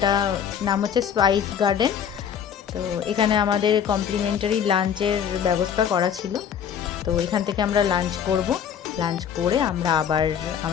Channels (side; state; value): right; quieter; 8.3 dB